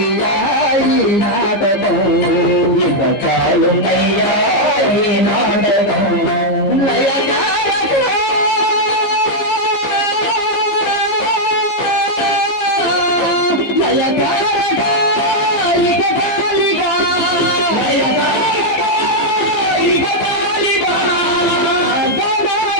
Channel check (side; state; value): right; late; 15 ms